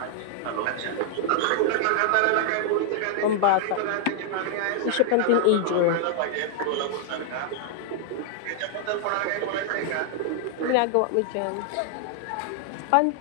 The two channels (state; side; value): different; both; correlation 0.00